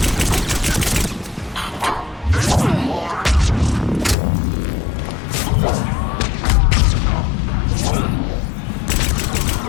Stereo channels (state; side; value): drops out; right; at 4.2 s